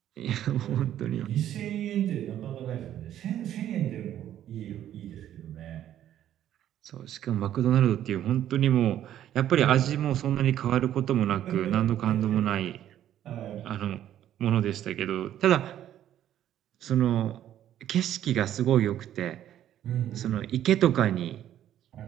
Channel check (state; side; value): quieter; left; 11.5 dB